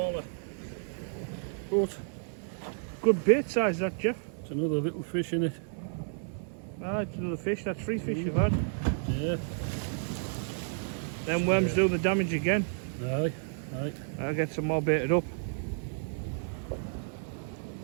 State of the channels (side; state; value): left; silent; 56 dB below the other